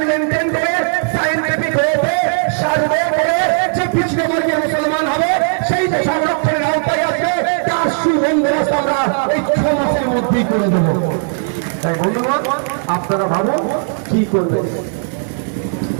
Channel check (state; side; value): silent; left; digital silence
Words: মেনটেন করে, সায়েন্টিফিক ওয়েতে সার্ভে করে যে পিছিয়ে বর্গের মুসলমান হবে সেই যে সংরক্ষণের আওতায় আসবে, তার সুবন্দোবস্ত আমরা এই 6 মাসের মধ্যেই করে দেবো। তাই বন্ধুগণ, আপনারা ভাবুন কি করবেন।